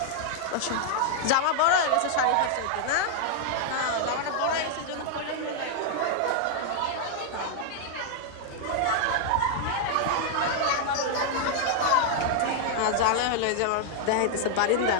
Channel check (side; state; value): both; different; correlation 0.00